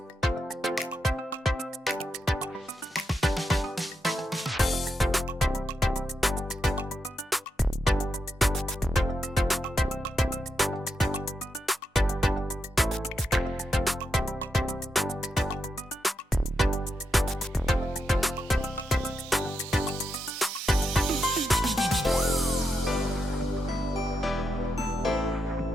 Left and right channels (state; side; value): normal; both; correlation 0.84